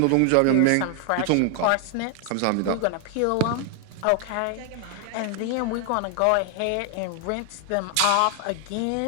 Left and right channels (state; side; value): different; both; correlation 0.00